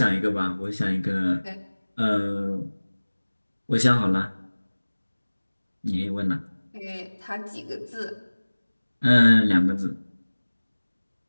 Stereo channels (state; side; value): inverted; both; correlation -1.00